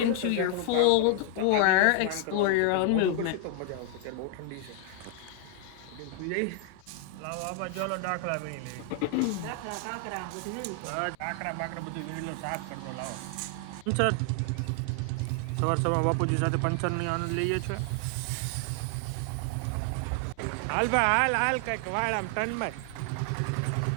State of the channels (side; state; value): both; different; correlation 0.00